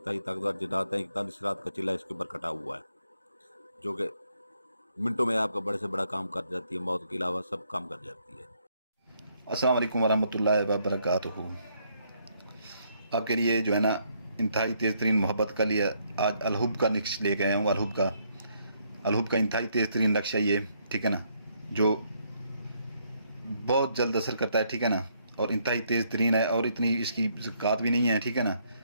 ताकतवर जिन्नात हैं। 41 रात का चिल्ला इसके ऊपर कटा हुआ है जो कि मिनटों में आपका बड़े से बड़ा काम कर जाती है, मौत के अलावा सब काम कर जाती है। अस्सलाम वालेकुम वरहमतुल्लाहि वबरकातुहू। आपके लिए जो है ना इंतहाई तेज़ तरीन मोहब्बत का लिए आज अलहुब का नक्श लेके आया हूँ। अलहुब का इंतहाई तेज़ तरीन नक्शा ये, ठीक है ना, जो बहुत जल्द असर करता है, ठीक है ना, और इंतहाई तेज़ तरीन है और इतनी इसकी ज़कात भी नहीं है, ठीक है ना।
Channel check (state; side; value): inverted; both; correlation -0.72